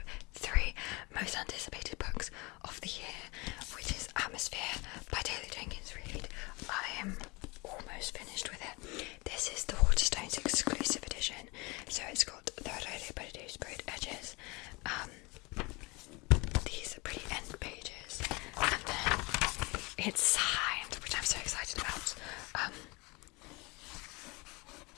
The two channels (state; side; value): quieter; right; 26.1 dB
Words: 3 most anticipated books of the year, which is Atmosphere by Taylor Jenkins Reid. I am almost finished with it. This is the Waterstones exclusive edition, so it's got the Rodeo Body sprayed edges, these pretty end pages, and then it's signed, which I'm so excited about.